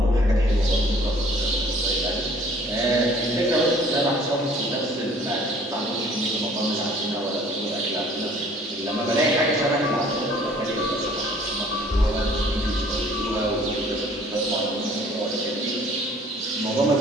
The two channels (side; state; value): both; normal; correlation 0.54